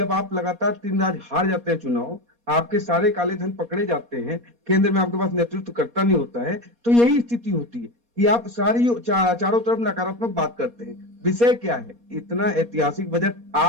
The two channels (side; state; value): left; late; 4.2 ms